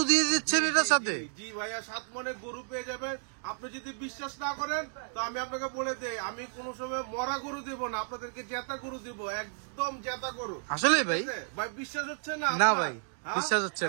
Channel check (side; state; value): left; silent; 57 dB below the other